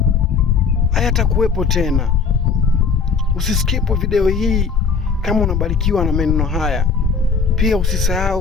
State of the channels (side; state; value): right; quieter; 5.3 dB